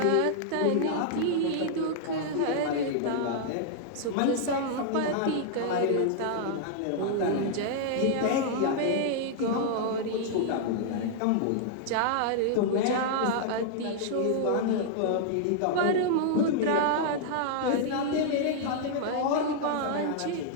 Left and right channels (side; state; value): both; different; correlation -0.01